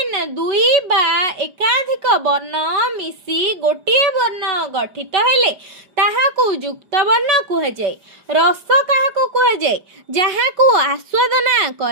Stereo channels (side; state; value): left; late; 5.0 ms